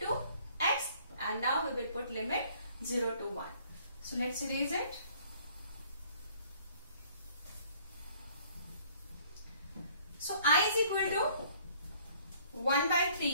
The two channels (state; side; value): inverted; both; correlation -0.58